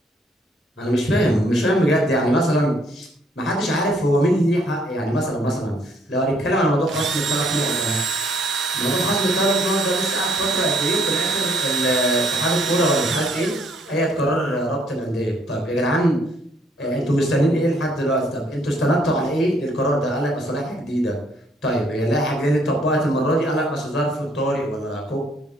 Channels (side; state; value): both; normal; correlation 0.66